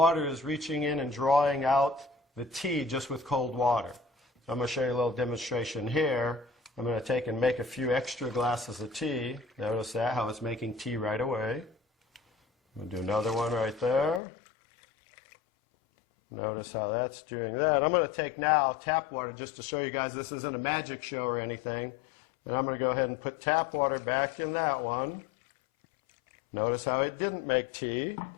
is reaching in and drawing out the tea just with cold water. So I'm going to show you a little demonstration here. I'm going to take and make a few extra glasses of tea. Notice that, how it's making tea right away. I'm going to do another one right there. Notice how that's doing that. I'm going to take now tap water just to show you guys this isn't a magic show or anything. And I'm going to go ahead and put tap water back in that one. Notice how it didn't make tea.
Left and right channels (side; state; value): right; drops out; at 14.2 s